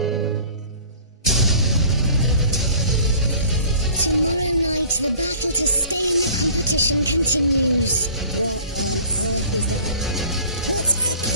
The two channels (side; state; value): both; inverted; correlation -0.48